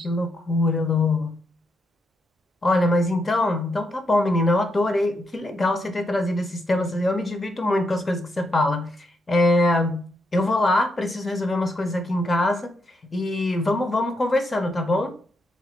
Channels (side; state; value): both; normal; correlation 0.80